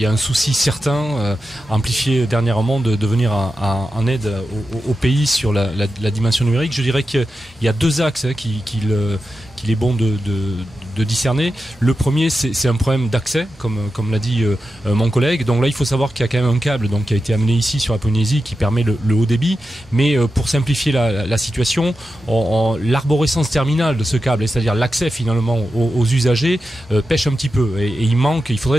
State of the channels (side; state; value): both; normal; correlation 0.91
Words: a un souci certain, amplifié dernièrement, de venir en aide au pays sur la dimension numérique. Je dirais qu'il y a 2 axes qu'il est bon de discerner. Le premier, c'est un problème d'accès, comme l'a dit mon collègue. Donc là, il faut savoir qu'il y a quand même un câble qui a été amené ici sur la Polynésie qui permet le haut débit. Mais pour simplifier la situation, l'arborescence terminale de ce câble, c'est-à-dire l'accès finalement aux usagers, pêche un petit peu. Et il